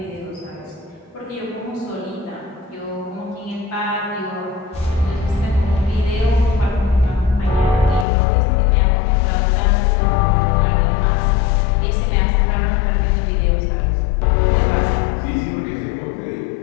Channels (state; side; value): drops out; right; at 8.1 s